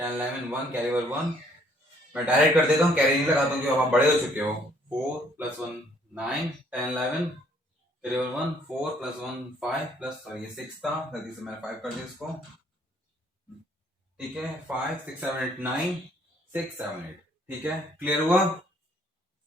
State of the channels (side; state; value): both; normal; correlation 0.63